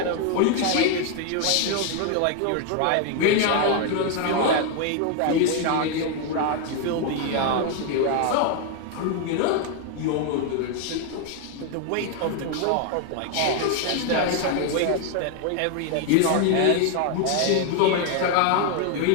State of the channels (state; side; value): different; both; correlation 0.01